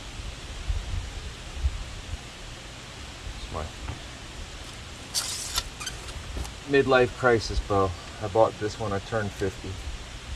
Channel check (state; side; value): identical; both; correlation 1.00